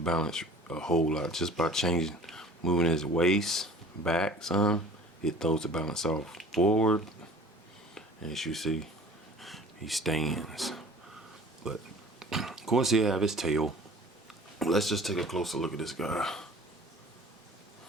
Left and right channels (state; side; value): normal; both; correlation 0.45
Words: a whole lot. Just by moving his waist back some, it throws the balance off forward, and as you see, he stands. But of course he'll have his tail. Let's just take a closer look at this guy.